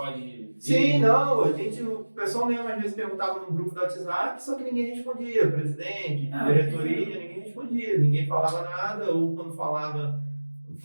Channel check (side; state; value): both; inverted; correlation -1.00